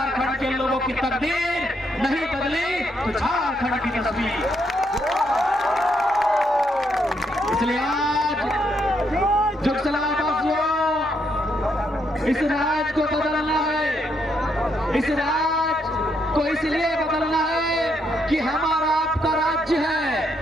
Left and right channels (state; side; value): normal; both; correlation 0.76